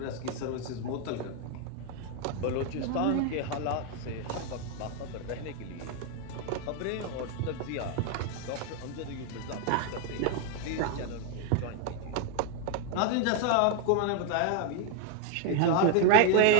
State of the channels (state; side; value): different; both; correlation 0.01